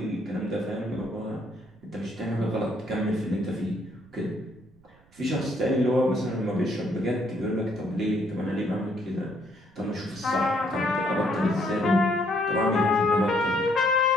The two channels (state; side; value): noise; right; rumble, 29 dB below the sound